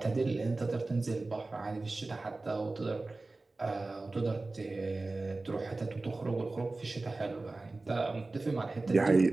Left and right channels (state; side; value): quieter; left; 3.3 dB